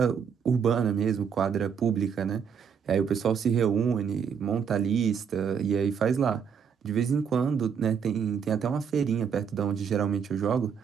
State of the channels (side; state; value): left; quieter; 7.1 dB